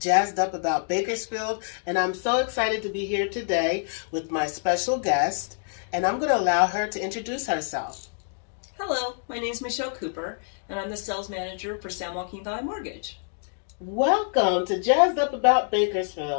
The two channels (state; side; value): silent; right; digital silence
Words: Up About Bakersfield, and I'm so excited to be here today with my special guest, and I'm going to allow her to introduce herself. Hello, my name is Michele Cooper, and I'm the sales manager for San Joaquin Valley Mortgage. Welcome to Jazzed Up About